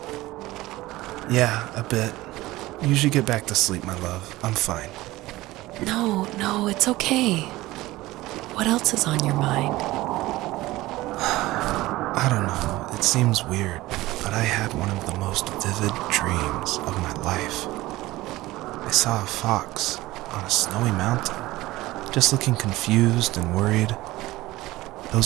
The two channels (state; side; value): quieter; left; 18.1 dB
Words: Yeah, a bit. Usually get back to sleep, my love. I'm fine. No, it's okay. What else is on your mind? I don't know, it seems weird, but I had one of the most vivid dreams of my life. I saw a fox on a snowy mountain, just looking confused and worried.